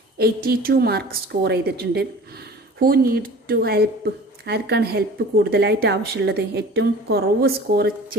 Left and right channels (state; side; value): normal; both; correlation 0.42